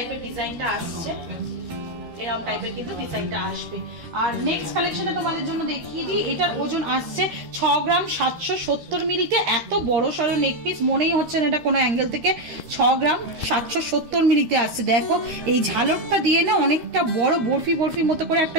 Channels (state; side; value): late; left; 13 ms